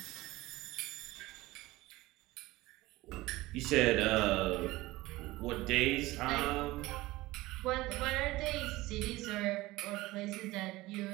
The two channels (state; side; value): quieter; left; 19.0 dB